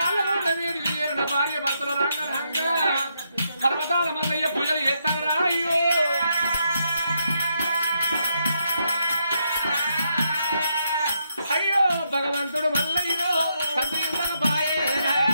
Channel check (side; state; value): both; inverted; correlation -0.79